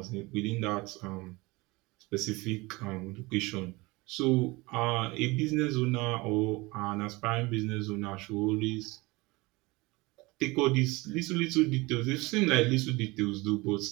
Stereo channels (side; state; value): left; quieter; 23.2 dB